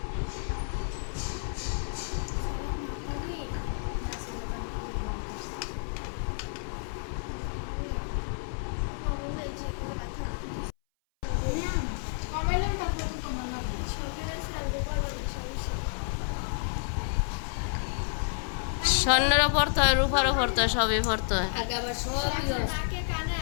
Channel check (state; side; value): silent; right; 58 dB below the other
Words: স্বর্ণেরও পড়তে হয়, রূপারও পড়তে হয়, সবই পড়তে হয়।